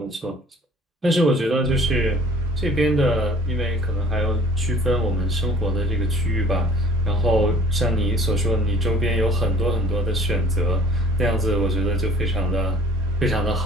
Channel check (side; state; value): both; normal; correlation 0.52